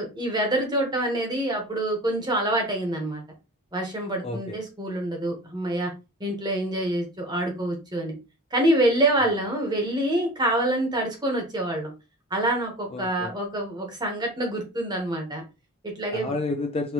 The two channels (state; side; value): normal; both; correlation 0.36